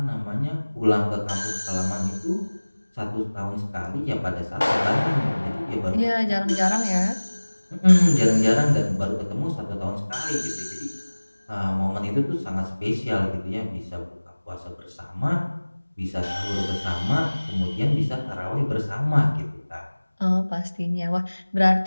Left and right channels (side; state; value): both; inverted; correlation -1.00